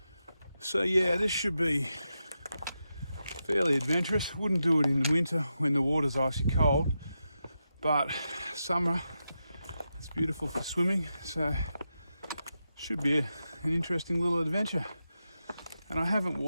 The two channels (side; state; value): both; inverted; correlation -0.88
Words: So yeah, this should be fairly adventurous. Wouldn't do it in the winter when the water's icy cold, but summer it's beautiful for swimming, so should be an interesting little adventure. And I haven't